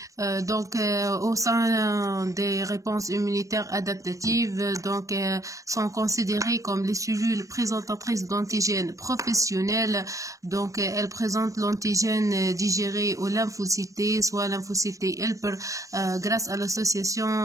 Au sein des réponses immunitaires adaptatives, sont considérées comme les cellules présentatrices d'antigènes professionnels. Donc, elles présentent l'antigène digéré aux lymphocytes, soit lymphocytes helper, grâce à l'association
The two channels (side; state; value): left; late; 0.16 ms